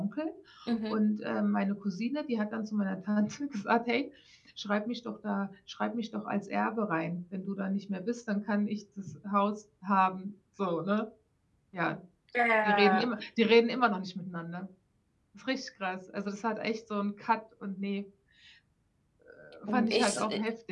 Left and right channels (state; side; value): identical; both; correlation 1.00